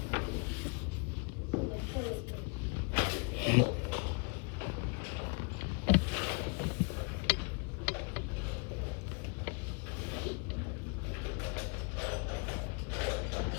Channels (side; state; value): right; quieter; 33.5 dB